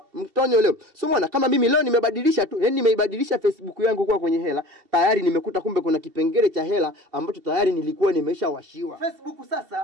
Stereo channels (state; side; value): late; left; 2.7 ms